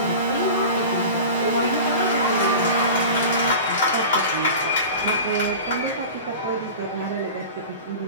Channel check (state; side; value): inverted; both; correlation -0.34